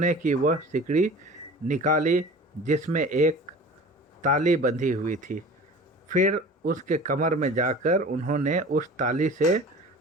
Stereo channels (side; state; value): both; normal; correlation 0.40